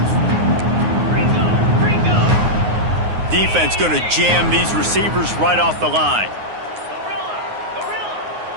Defense going to jam these receivers right off the line.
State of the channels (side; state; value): left; late; 9.6 ms